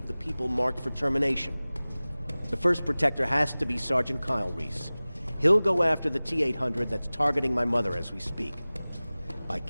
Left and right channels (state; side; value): inverted; both; correlation -0.99